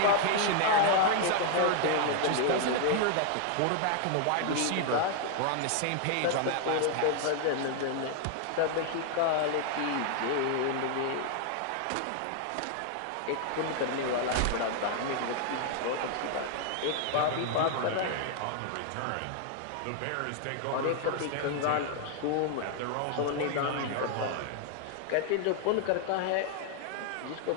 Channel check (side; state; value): both; different; correlation 0.00